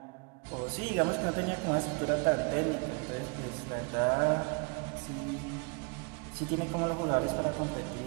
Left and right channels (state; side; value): quieter; left; 31.9 dB